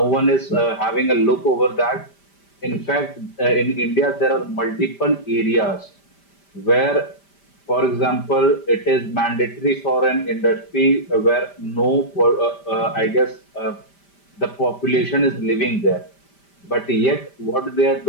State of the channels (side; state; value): right; late; 5.1 ms